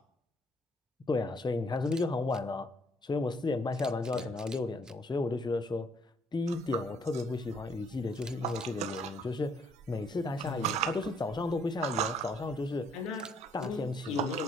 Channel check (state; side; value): normal; both; correlation 0.66